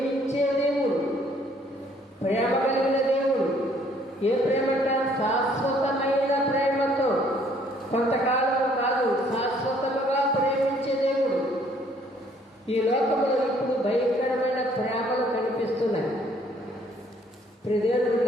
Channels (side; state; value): both; normal; correlation 0.62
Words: దేవుడు, ప్రేమ కలిగిన దేవుడు. ఏ ప్రేమంట? శాశ్వతమైన ప్రేమతో, కొంతకాలం కాదు, శాశ్వతముగా ప్రేమించే దేవుడు. ఈ లోకంలో ఇప్పుడు భయంకరమైన ప్రేమలు కనిపిస్తున్నాయి.